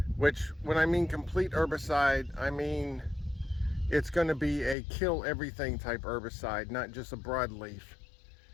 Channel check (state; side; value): drops out; right; at 4.8 s